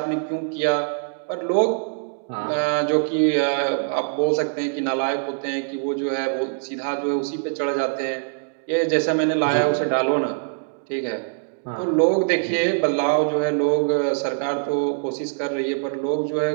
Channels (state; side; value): silent; left; digital silence